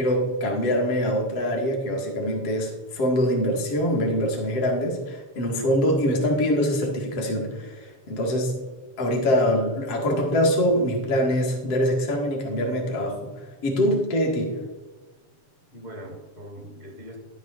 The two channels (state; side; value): late; right; 7.2 ms